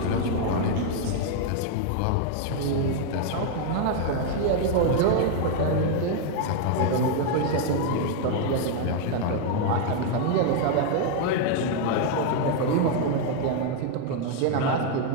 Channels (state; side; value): different; both; correlation 0.00